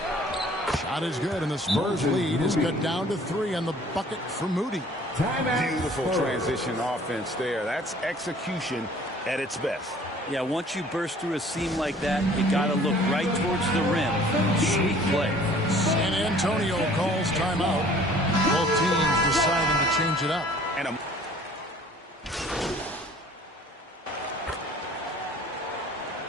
Shot is good, and the Spurs lead is cut down to 3 on the bucket for Moody. Beautiful transition offense there. That's execution at its best. Yeah, once you burst through a seam like that, you got to look right towards the rim. Sweet play. San Antonio calls timeout. Both teams deciding to change it up.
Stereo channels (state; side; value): normal; both; correlation 0.53